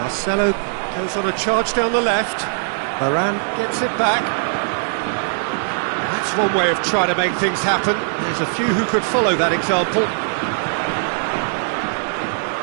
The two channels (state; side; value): silent; left; digital silence